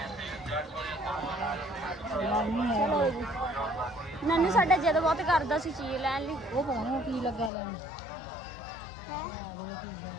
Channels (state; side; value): drops out; right; at 7.5 s